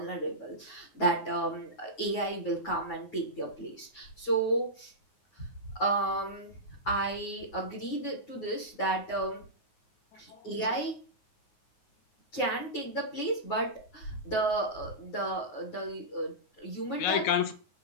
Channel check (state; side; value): late; right; 9.5 ms